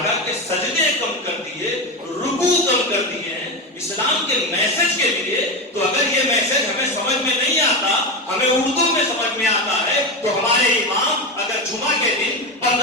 کے سجدے کم کر دیے، رکوع کم کر دیے ہیں اسلام کے میسج کے لیے، تو اگر یہ میسج ہمیں سمجھ میں نہیں آتا، ہمیں اردو میں سمجھ میں آتا ہے، تو ہمارے امام اگر جمعہ کے دن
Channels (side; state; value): both; normal; correlation 0.17